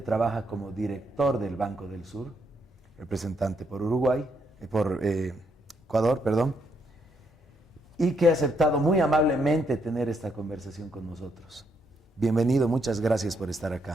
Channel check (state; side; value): normal; both; correlation 0.75